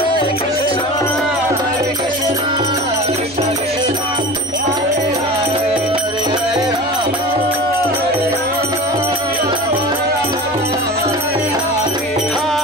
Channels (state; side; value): normal; both; correlation 0.34